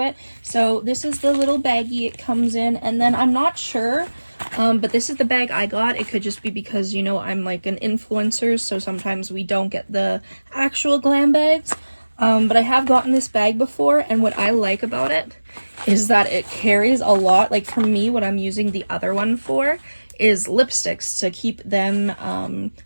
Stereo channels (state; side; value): inverted; both; correlation -1.00